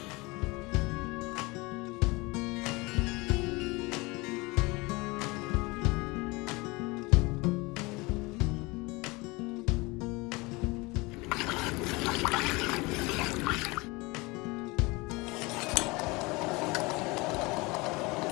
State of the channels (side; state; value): right; quieter; 24.4 dB